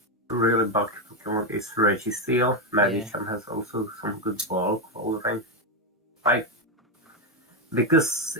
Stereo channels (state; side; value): normal; both; correlation 0.07